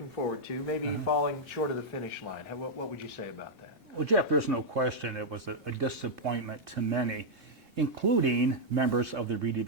forward to, maybe falling short of the finish line. What would you say about that? Well, Jeff, there's no question it was a disappointment to many, including members of the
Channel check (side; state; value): both; normal; correlation -0.05